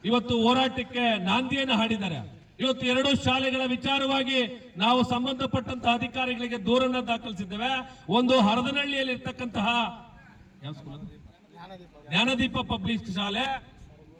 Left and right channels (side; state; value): both; identical; correlation 1.00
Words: ಇವತ್ತು ಹೋರಾಟಕ್ಕೆ ನಾಂದಿಯನ್ನು ಹಾಡಿದ್ದಾರೆ. ಇವತ್ತು 2 ಶಾಲೆಗಳ ವಿಚಾರವಾಗಿ ನಾವು ಸಂಬಂಧಪಟ್ಟಂತಹ ಅಧಿಕಾರಿಗಳಿಗೆ ದೂರನ್ನ ದಾಖಲಿಸಿದ್ದೇವೆ. ಒಂದು ಹರದನಹಳ್ಳಿಯಲ್ಲಿ ಇರ್ತಕ್ಕಂತಹ ಜ್ಞಾನದೀಪ ಪಬ್ಲಿಕ್ ಶಾಲೆ